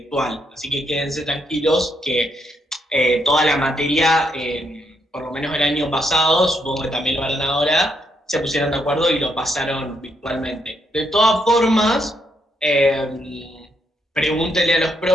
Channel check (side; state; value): both; normal; correlation 0.77